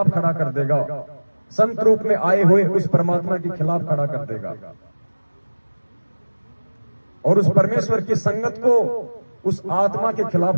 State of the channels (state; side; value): inverted; both; correlation -1.00